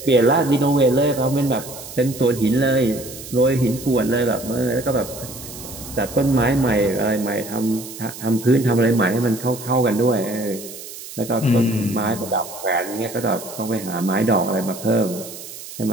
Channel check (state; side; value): noise; right; hiss, 13 dB below the sound